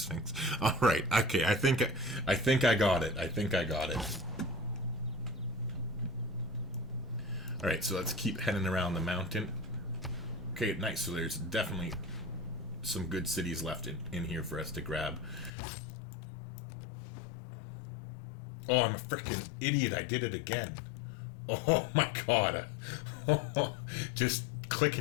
All right, okay, I think I got it. I think I got it. All right, so let's keep heading around the mountain. Okay, nice. So there's definitely some good cities left in here for us to grab. Oh, I'm a freaking idiot. I did it again. Oh my god. Just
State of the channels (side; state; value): right; drops out; at 15.5 s